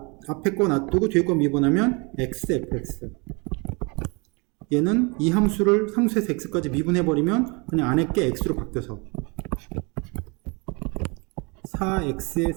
놔두고 뒤에 거 미분하면 x fx. 얘는 이 함수를 상수에서 x까지 미분해버리면 그냥 안에 게 x로 바뀌어서 4x의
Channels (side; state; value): left; quieter; 29.8 dB